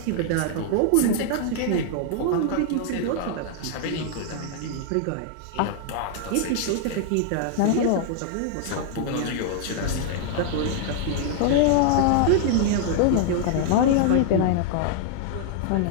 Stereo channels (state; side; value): different; both; correlation 0.00